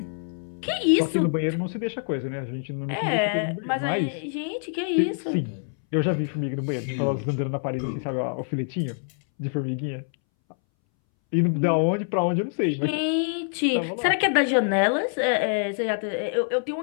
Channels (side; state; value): right; silent; 61 dB below the other